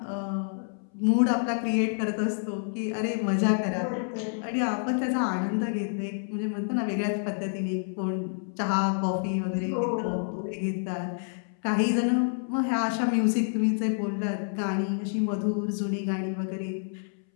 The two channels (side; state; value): right; silent; 59 dB below the other